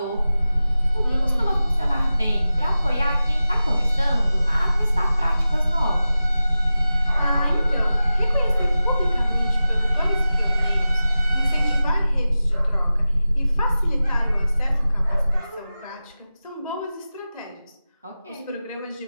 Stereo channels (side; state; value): both; inverted; correlation -0.94